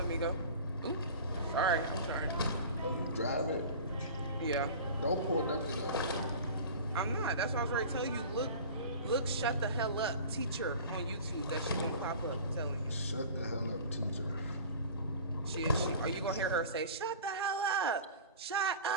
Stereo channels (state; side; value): inverted; both; correlation -0.39